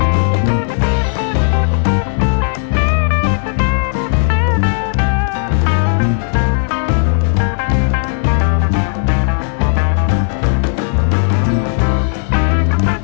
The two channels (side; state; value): right; silent; 68 dB below the other